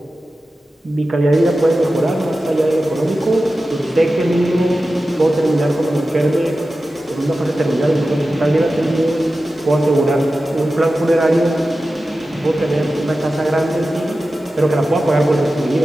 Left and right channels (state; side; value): normal; both; correlation 0.94